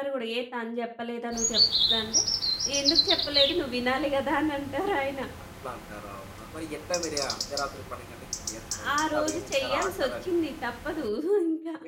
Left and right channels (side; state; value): both; identical; correlation 1.00